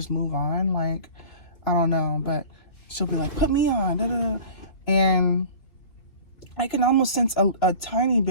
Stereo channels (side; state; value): right; late; 3.1 ms